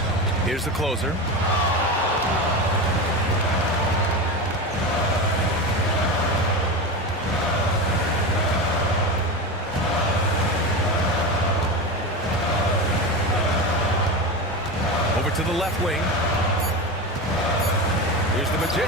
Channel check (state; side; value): normal; both; correlation 0.22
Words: Here's the closer. Over to the left wing. Here's the